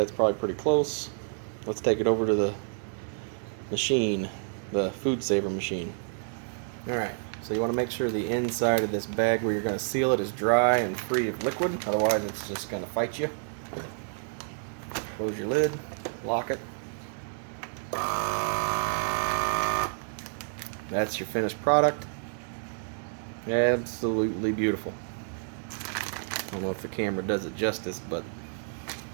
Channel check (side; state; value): left; silent; 58 dB below the other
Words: probably pretty close. Let's take it over to the machine, the food saver machine. Alright, so you want to make sure the inside of this bag where you're going to seal it is dry and free of liquid, otherwise it's just going to fight you. Close your lid, lock it. That's your finished product. Absolutely beautiful. I don't know if the camera does it justice, but